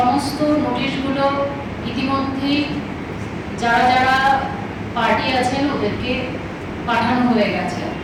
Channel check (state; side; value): identical; both; correlation 1.00